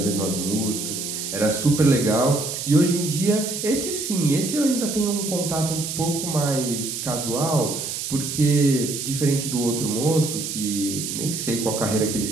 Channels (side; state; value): right; noise; hiss, 5 dB below the sound